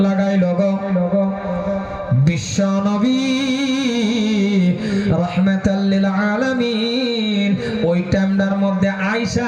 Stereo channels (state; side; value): identical; both; correlation 1.00